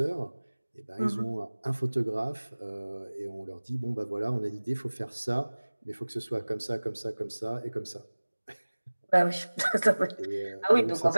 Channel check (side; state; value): both; inverted; correlation -1.00